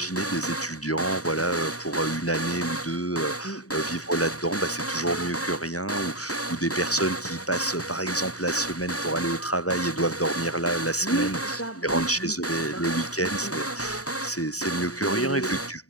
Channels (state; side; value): late; right; 0.66 ms